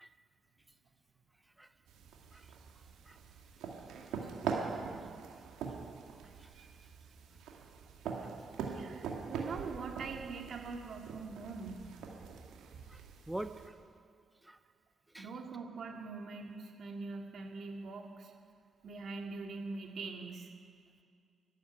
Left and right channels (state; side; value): quieter; left; 4.5 dB